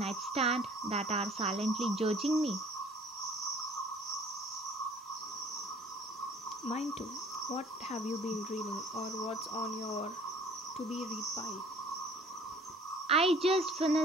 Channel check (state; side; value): normal; both; correlation 0.53